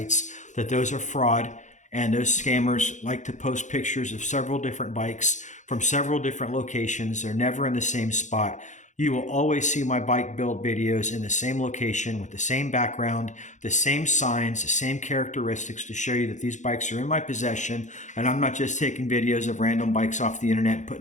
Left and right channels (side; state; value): right; late; 0.35 ms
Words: that those are fraud, and those scammers like to post pictures of several different bikes from several different locations. They're never in the same spot. You will always see my bike build videos in the same location with the same background, the same signs, the same characteristics to show you that these bikes are in my possession, and I'm not just taking videos of random bikes off the internet and